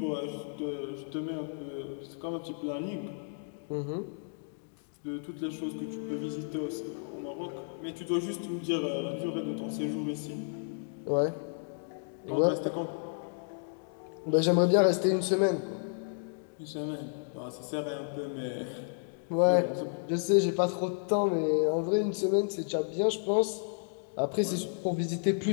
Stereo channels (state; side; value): silent; right; digital silence